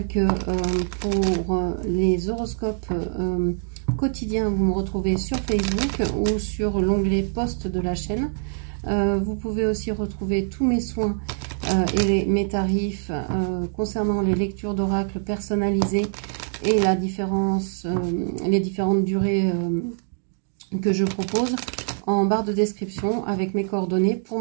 que pour les horoscopes quotidiens, vous me retrouvez sur Facebook ou sur l'onglet post de la chaîne. Vous pouvez aussi retrouver tous mes soins et mes tarifs concernant les lectures d'oracle personnalisées et la différence, les différentes durées que je propose en barre de description avec mes coordonnées pour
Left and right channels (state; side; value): silent; left; 61 dB below the other